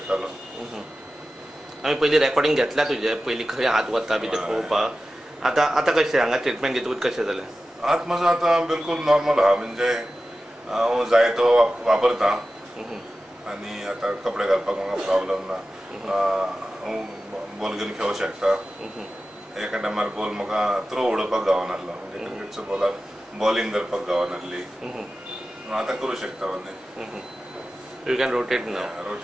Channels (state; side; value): normal; both; correlation 0.94